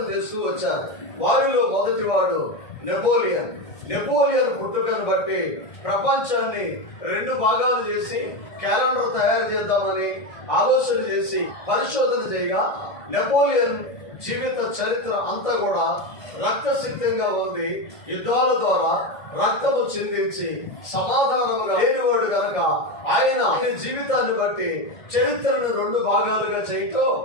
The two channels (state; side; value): late; right; 2.0 ms